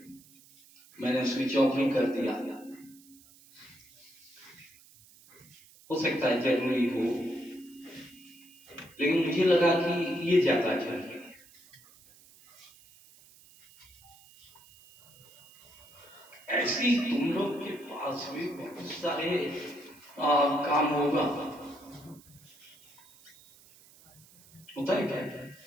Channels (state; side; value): noise; right; hiss, 25 dB below the sound